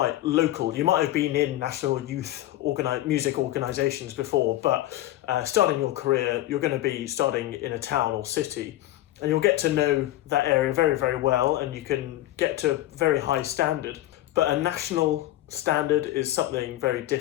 local. You might have been in national youth music organisations before, but starting your career, you're going to be starting in a town or city. And you'll get to know that area very, very well, and you can get to a very high standard. But a national standard is something very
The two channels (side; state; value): right; quieter; 15.2 dB